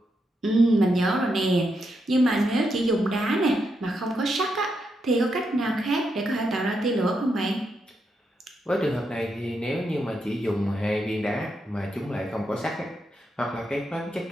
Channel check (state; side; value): normal; both; correlation 0.82